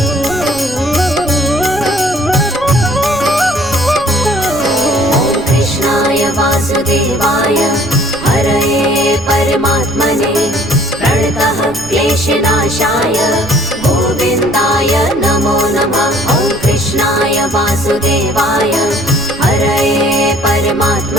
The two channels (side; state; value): right; noise; rumble, 16 dB below the sound